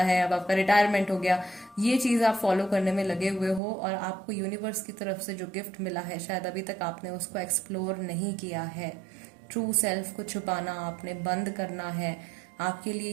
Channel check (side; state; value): left; drops out; at 3.6 s